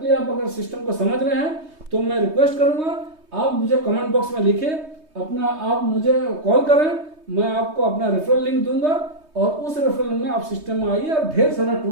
आप अगर सिस्टम को समझ रहे हैं तो मैं रिक्वेस्ट करूंगा आप मुझे कमेंट बॉक्स में लिखें, अपना आप मुझे कॉल करें, मैं आपको अपना रेफरल लिंक दूंगा और उस रेफरल में आप सिस्टम में आइए और ढेर सारा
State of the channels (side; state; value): left; late; 3.2 ms